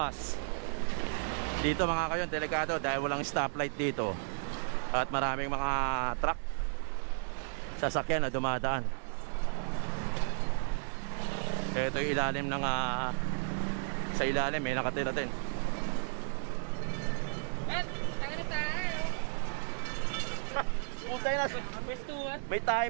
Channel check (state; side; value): silent; left; 55 dB below the other